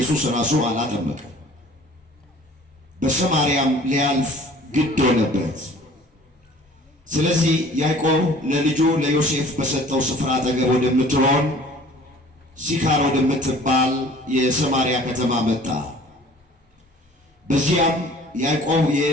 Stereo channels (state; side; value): normal; both; correlation 0.50